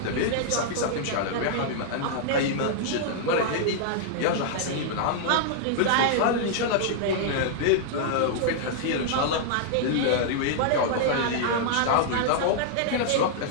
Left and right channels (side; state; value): both; different; correlation -0.01